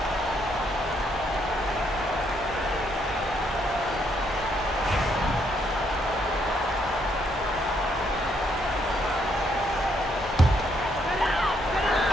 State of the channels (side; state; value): both; normal; correlation 0.73